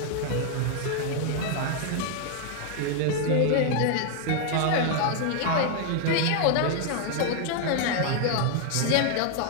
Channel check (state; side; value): different; both; correlation 0.00